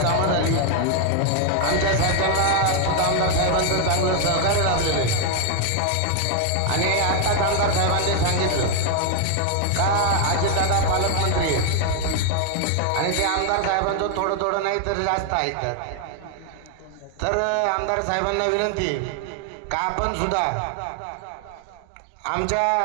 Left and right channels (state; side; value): different; both; correlation 0.00